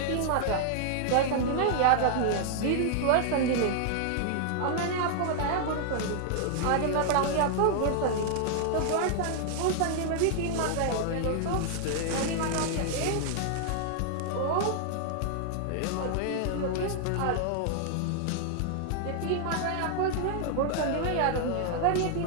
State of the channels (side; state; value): both; different; correlation -0.01